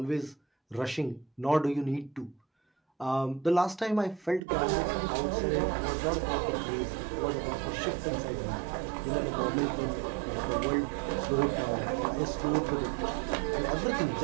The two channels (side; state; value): left; drops out; at 4.4 s